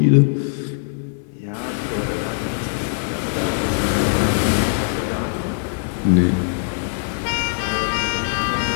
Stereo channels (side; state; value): right; silent; 60 dB below the other